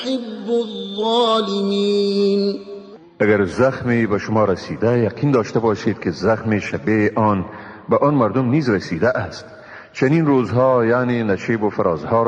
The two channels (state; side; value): identical; both; correlation 1.00